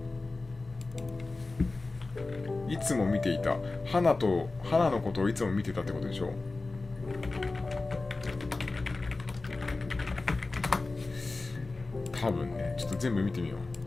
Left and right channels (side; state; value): right; quieter; 3.4 dB